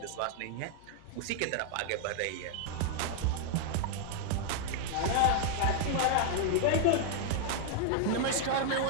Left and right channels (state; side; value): different; both; correlation 0.00